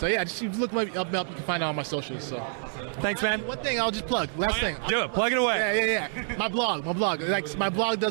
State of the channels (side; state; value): left; silent; 60 dB below the other